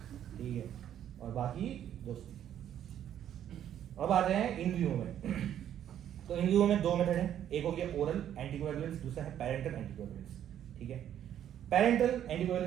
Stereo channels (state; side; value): quieter; left; 10.4 dB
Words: ठीक है, और बाकी दोस्ती। अब आते हैं इन व्यू में। तो इन व्यू में दो मेथड है, एक हो गया ओरल एंटीकोएगुलेंट्स, दूसरा है पैरेंटल एंटीकोएगुलेंट्स, ठीक है। पैरेंटल